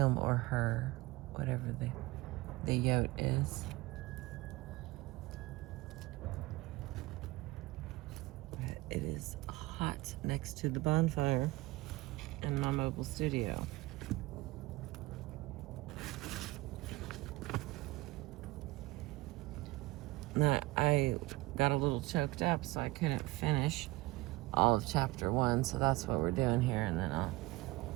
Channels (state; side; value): quieter; left; 20.6 dB